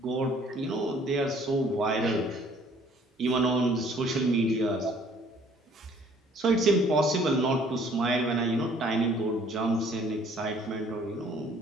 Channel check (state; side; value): normal; both; correlation 0.58